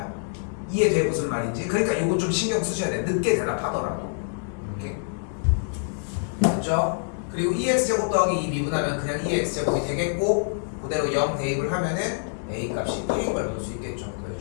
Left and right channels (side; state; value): right; silent; digital silence